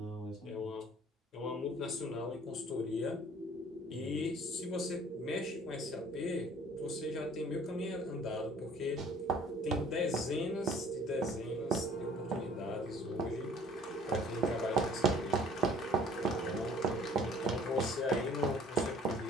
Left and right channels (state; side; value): normal; both; correlation 0.54